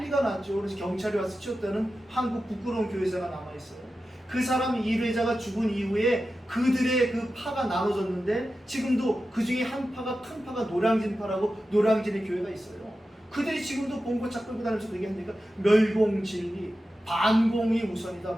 났죠. 그래서 경찰이 와서 치웠다는 한국 부끄러운 교회사가 남아있어요. 그 사람 일회자가 죽은 이후에 그들의 그 파가 나눠졌는데 지금도 그 중에 한 파가 큰 파가 노량진파라고 노량진의 교회가 있어요. 그들이 지금도 본고차 끌고 다니면서 얘기하니까 멸공진리, 반공이 우선이다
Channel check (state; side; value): normal; both; correlation 0.92